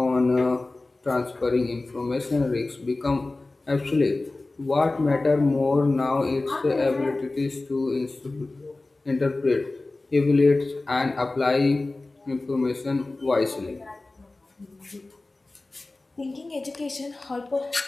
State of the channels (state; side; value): quieter; right; 3.1 dB